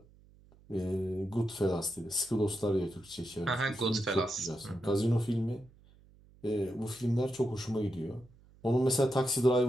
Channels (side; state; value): right; noise; hum, 26 dB below the sound